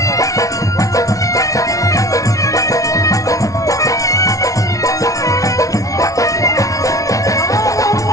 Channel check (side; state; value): right; late; 0.17 ms